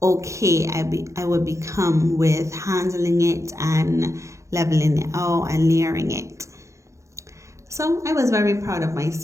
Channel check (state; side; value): late; left; 0.15 ms